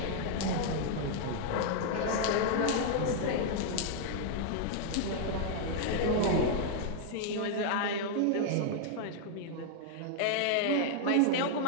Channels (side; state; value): both; different; correlation 0.00